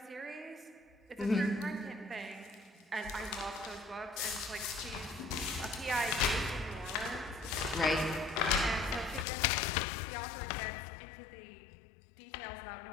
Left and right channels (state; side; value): drops out; right; at 9.2 s